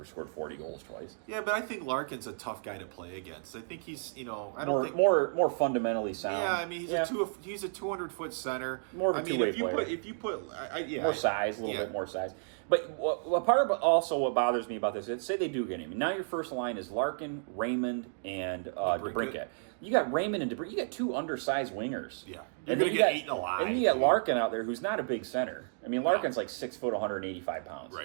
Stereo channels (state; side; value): silent; left; digital silence